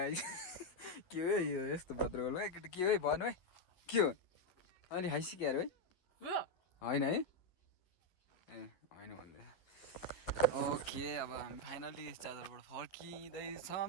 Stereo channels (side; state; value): right; late; 11 ms